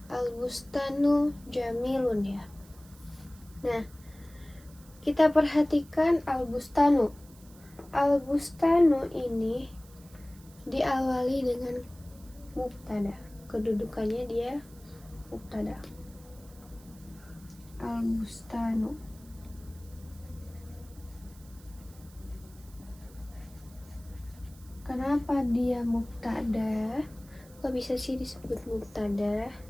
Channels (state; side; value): noise; right; hiss, 24 dB below the sound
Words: Al-bustanu jamilun ya. Nah, kita perhatikan al-bustanu. Al-bustanu ini diawali dengan mubtada. Kedudukannya dia mubtada. Al-bustanu. Kenapa dia mubtada? Kok bisa sih disebut mubtada?